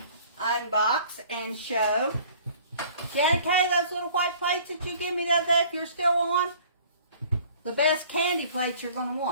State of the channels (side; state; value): both; inverted; correlation -0.51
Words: unbox and show. Janet Kay, those little white plates that you give me the other day, if you're still on, the best candy plates you're going to